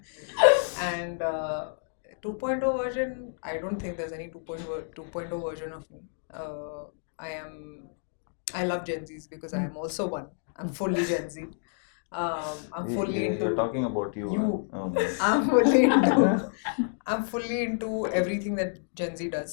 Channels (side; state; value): right; silent; digital silence